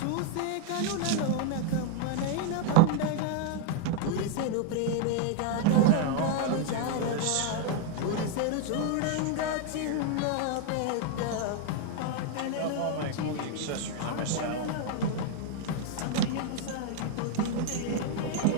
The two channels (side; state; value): both; different; correlation 0.00